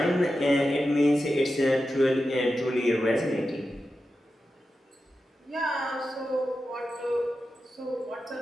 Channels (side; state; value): both; normal; correlation 0.91